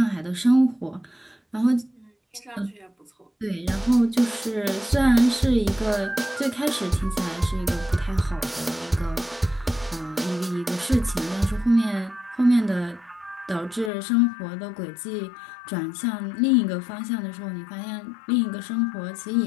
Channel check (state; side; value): drops out; right; at 13.9 s